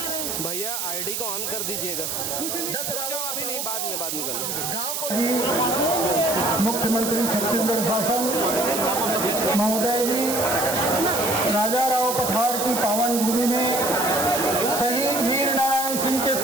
भैया आईडी को ऑन कर दीजिएगा। 10 अभी नहीं, बाद में करना। गाँव को मुख्यमंत्री छत्तीसगढ़ शासन महोदय जी राजाराव पठार की पावन भूमि में शहीद वीर नारायण सिंह के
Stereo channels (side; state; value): right; noise; hiss, 3 dB below the sound